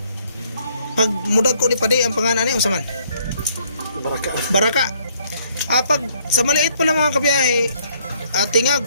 Pag mudag ko ni Pade, ang pangalan niya, usaman? Baraka. Pag sa maliit pa lang mga kabiyahe,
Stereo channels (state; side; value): inverted; both; correlation -0.66